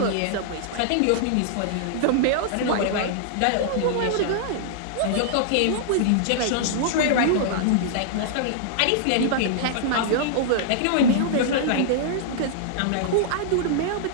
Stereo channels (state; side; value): different; both; correlation -0.01